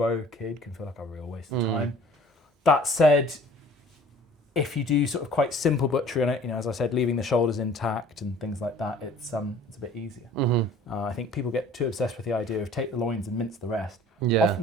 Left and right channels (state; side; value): normal; both; correlation 0.49